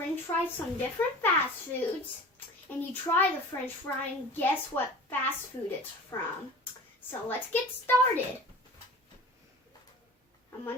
fries from different fast foods, and you try the French fry and guess what fast food it's from. So let's get started. I'm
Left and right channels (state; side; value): normal; both; correlation 0.39